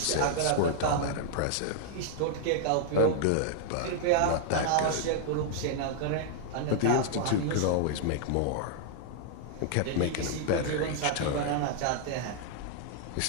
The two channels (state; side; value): different; both; correlation -0.01